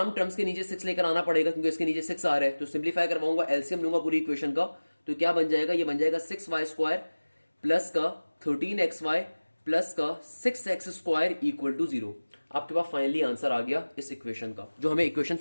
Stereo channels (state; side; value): inverted; both; correlation -1.00